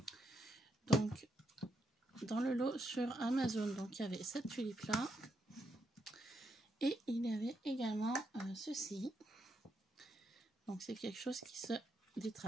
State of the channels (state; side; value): normal; both; correlation 0.79